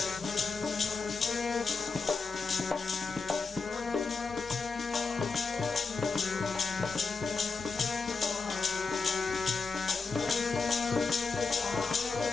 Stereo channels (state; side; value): quieter; right; 4.4 dB